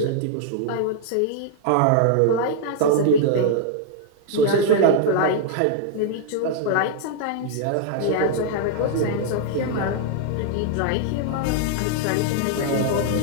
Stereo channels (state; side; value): different; both; correlation -0.01